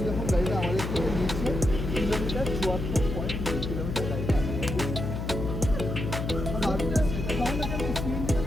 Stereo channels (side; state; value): left; noise; hum, 4 dB below the sound